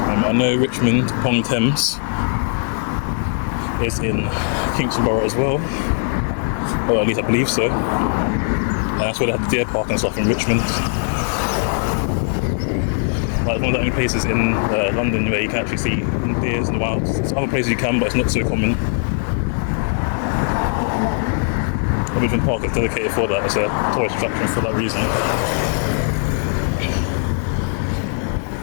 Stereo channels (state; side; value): silent; right; 61 dB below the other